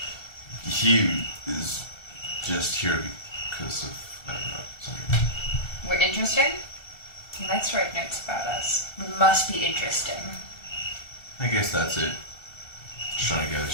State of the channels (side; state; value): right; late; 2.7 ms